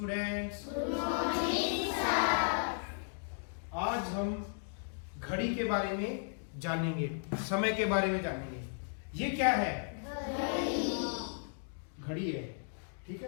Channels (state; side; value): silent; right; digital silence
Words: Good morning sir. आज हम घड़ी के बारे में जानेंगे, समय के बारे में जानेंगे। ये क्या है? घड़ी है, ठीक